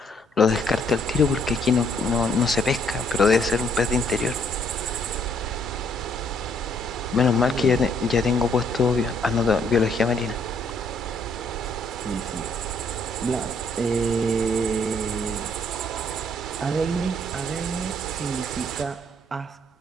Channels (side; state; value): both; normal; correlation 0.67